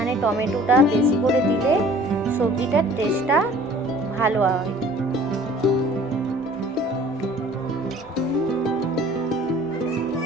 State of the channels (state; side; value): normal; both; correlation 0.50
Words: টমেটোটা বেশি করে দিলে সবজিটার টেস্টটা ভালো হয়।